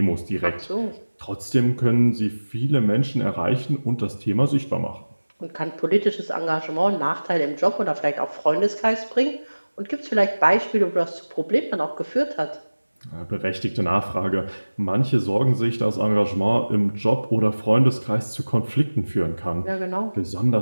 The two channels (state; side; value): inverted; both; correlation -1.00